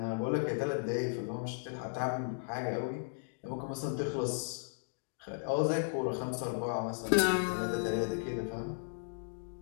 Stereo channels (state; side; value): silent; right; digital silence